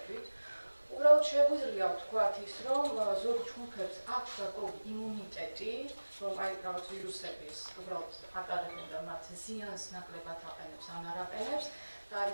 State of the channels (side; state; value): both; inverted; correlation -1.00